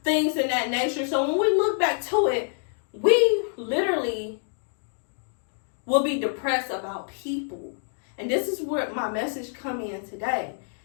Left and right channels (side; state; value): right; silent; digital silence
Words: things in that nature. So when we look back to it, we literally will be depressed about people. And this is where my message come in today.